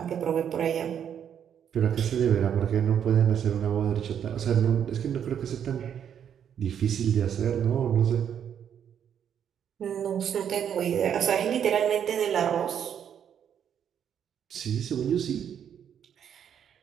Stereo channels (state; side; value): quieter; left; 8.7 dB